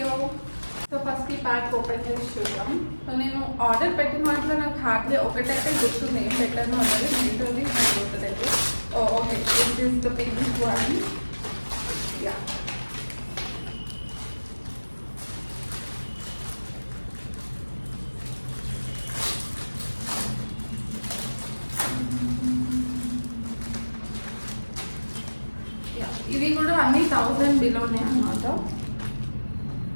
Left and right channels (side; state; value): both; inverted; correlation -1.00